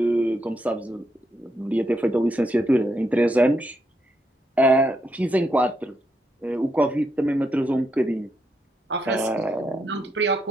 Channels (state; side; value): normal; both; correlation 0.80